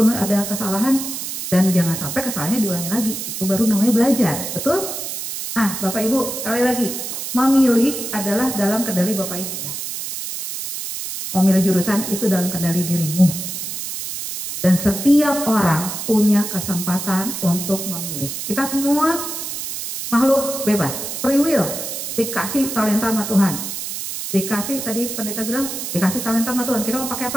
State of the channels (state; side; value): noise; right; hiss, 6 dB below the sound